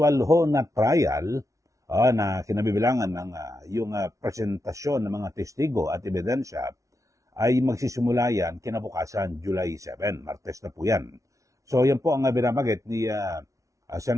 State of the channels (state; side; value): late; left; 0.15 ms